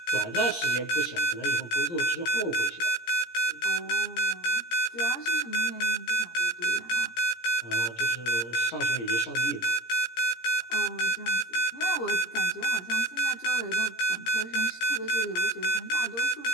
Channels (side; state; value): right; late; 17 ms